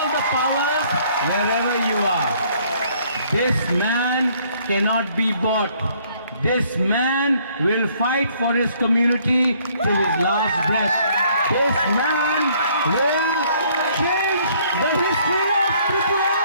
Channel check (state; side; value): inverted; both; correlation -0.63